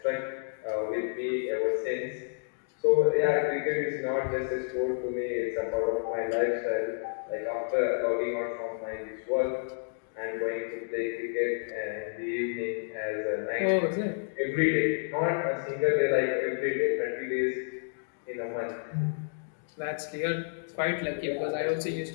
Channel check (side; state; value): right; silent; digital silence